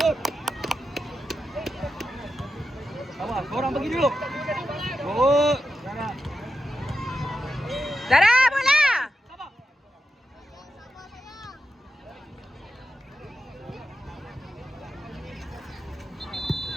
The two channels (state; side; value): normal; both; correlation 0.89